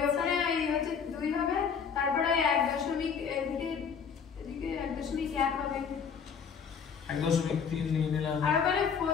ওখানে এই হচ্ছে 2 হবে, তারপরে 1.1 এদিকে 1.1 হবে, 1.3 নিয়ে নিলাম, আর ওখানে 4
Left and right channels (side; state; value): right; quieter; 6.6 dB